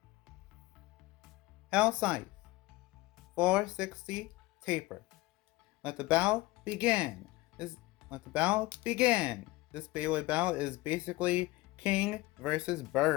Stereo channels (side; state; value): right; quieter; 19.9 dB